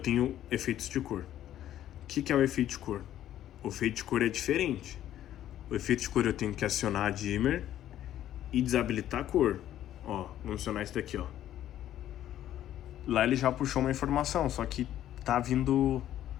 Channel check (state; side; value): quieter; right; 12.0 dB